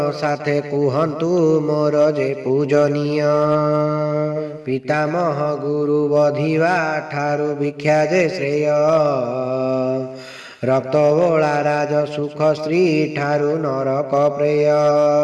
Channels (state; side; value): identical; both; correlation 1.00